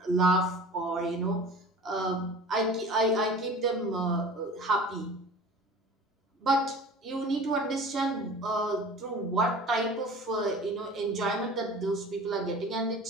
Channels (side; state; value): both; normal; correlation 0.41